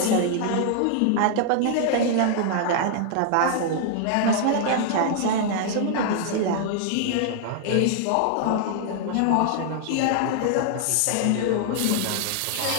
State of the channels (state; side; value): different; both; correlation 0.00